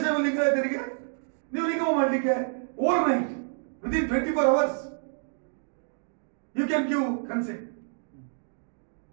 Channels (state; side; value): silent; left; 59 dB below the other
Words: ಲಿಂಗಾಯತರಿಗೆ ನೀವು ನಿಗಮ ಮಾಡಲಿಕ್ಕೆ over night within 24 hours you can give consent,